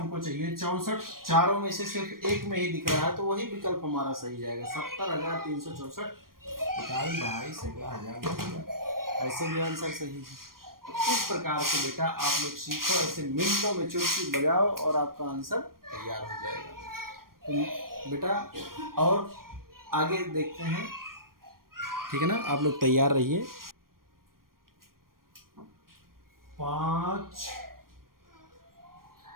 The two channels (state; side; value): late; left; 0.91 ms